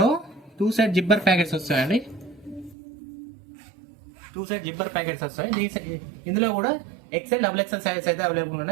2 సైడ్ జిబ్బర్ ప్యాకెట్స్ వస్తాయండి. 2 సైడ్ జిబ్బర్ ప్యాకెట్స్ వస్తాయి. ఇందులో కూడా XL XXL సైజ్ అయితే అవైలబుల్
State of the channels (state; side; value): drops out; left; at 2.8 s